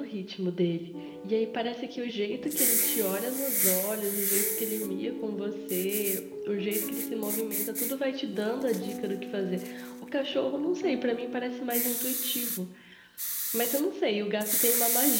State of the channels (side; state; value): both; identical; correlation 1.00